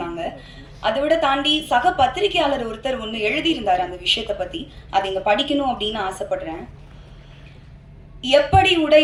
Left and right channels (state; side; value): identical; both; correlation 1.00